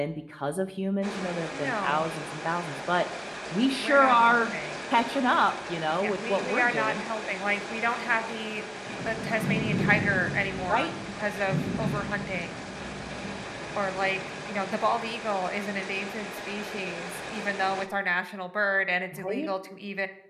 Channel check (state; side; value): identical; both; correlation 1.00